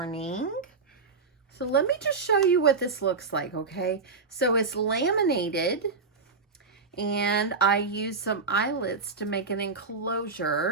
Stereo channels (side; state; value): left; quieter; 4.4 dB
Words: So let me just show you what this looks like, okay? So it's laminated, and I used some eyelets to make an